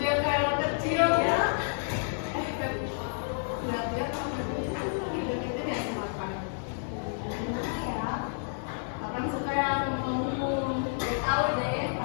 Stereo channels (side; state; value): right; silent; digital silence